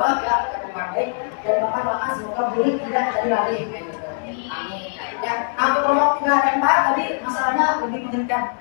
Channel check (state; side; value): silent; right; 65 dB below the other